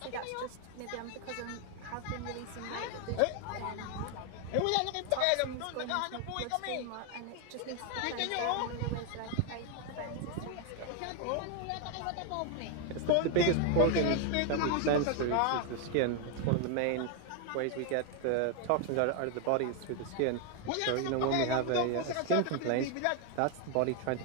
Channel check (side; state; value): both; different; correlation 0.01